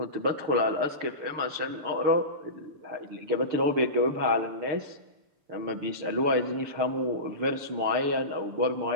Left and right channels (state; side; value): late; left; 6.8 ms